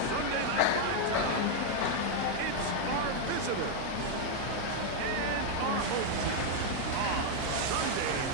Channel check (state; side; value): different; both; correlation 0.00